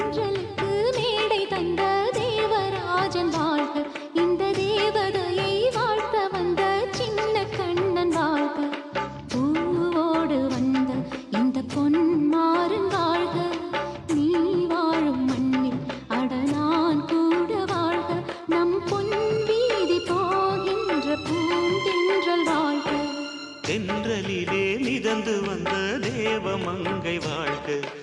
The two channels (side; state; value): both; identical; correlation 1.00